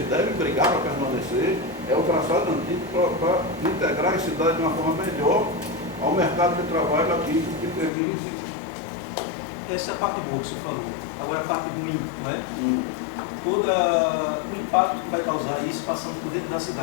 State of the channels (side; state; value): right; drops out; at 7.9 s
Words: devem brigar para permanecer, é o traçado antigo para integrar a cidade de uma forma melhor ao mercado de trabalho aqui, que termine esse. Essa é a parte boa que você falou. Agora a parte ruim, né? Todo o impacto que vai causar isso passando por dentro da